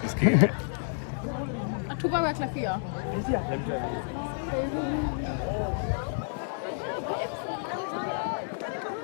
Tu vas mettre la fille.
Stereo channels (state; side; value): silent; right; digital silence